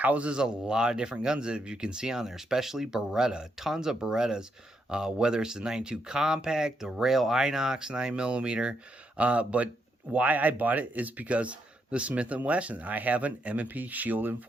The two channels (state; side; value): normal; both; correlation 0.79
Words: a lot of different guns that you can see on there, especially Beretta, tons of Berettas, whether it's the 92 Compact, the Rail Inox 9mm, but why I bought it is because the Smith & Wesson. I have an M&P Shield in